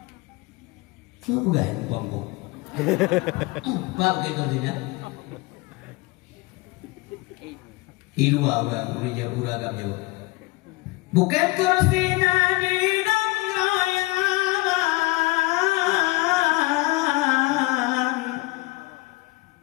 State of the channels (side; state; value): right; quieter; 22.8 dB